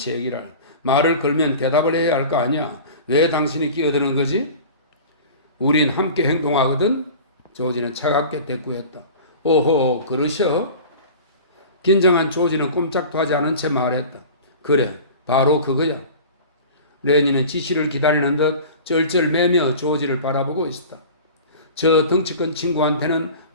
말을 걸면 대답을 해야 할 거 아니야. 왜 당신이 끼어드는 거지? 우린 함께 행동하거든? 조지는 차갑게 대꾸했다. 오호, 그러셔? 긴장한 조지는 꼼짝도 하지 않은 채 말했다. 그래, 바로 그거야. 레니는 지시를 기다리는 듯 쩔쩔매며 조지를 바라보고 있었다. 저 덩치 큰 친구한테는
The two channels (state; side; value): inverted; both; correlation -0.38